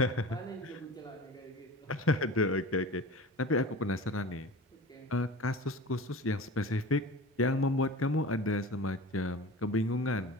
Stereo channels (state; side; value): normal; both; correlation 0.35